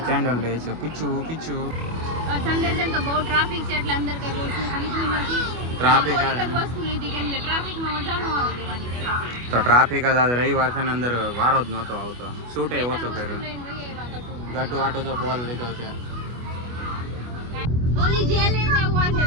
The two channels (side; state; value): left; late; 25 ms